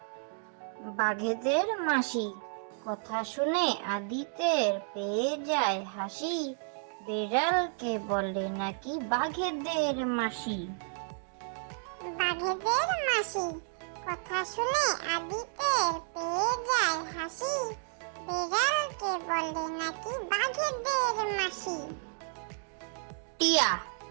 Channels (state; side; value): silent; left; 57 dB below the other